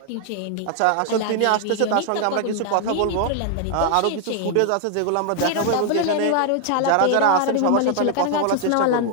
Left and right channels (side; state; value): both; different; correlation 0.00